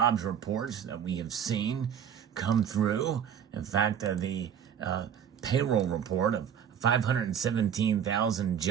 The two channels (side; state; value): left; quieter; 8.5 dB